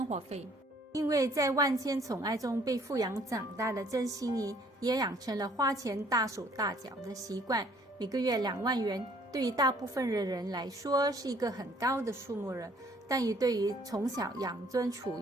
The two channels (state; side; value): normal; both; correlation 0.60